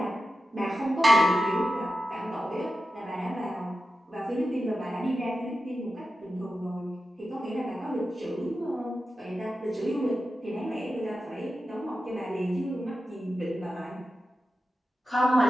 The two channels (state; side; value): normal; both; correlation 0.92